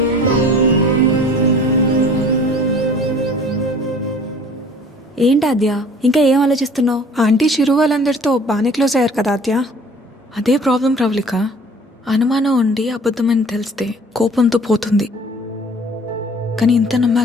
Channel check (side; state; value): both; normal; correlation 0.48